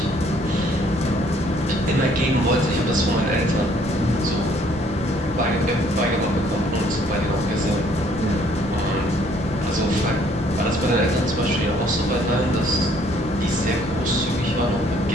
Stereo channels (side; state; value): both; normal; correlation 0.62